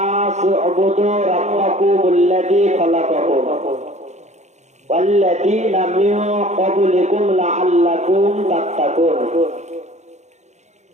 উবুদু রাব্বাকুমুল্লাযী খালাকাকুম ওয়াল্লাযীনা মিন ক্বাবলিকুম লাআল্লাকুম তাত্তাকুন।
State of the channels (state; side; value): late; left; 0.33 ms